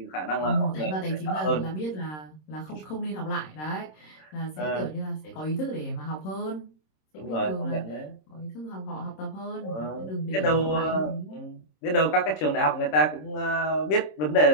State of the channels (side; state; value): right; late; 26 ms